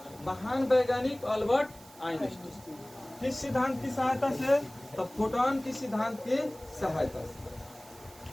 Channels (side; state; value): right; noise; hiss, 22 dB below the sound